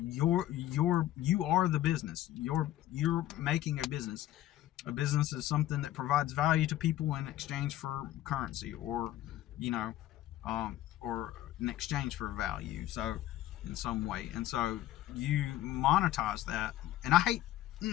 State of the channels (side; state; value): right; quieter; 13.9 dB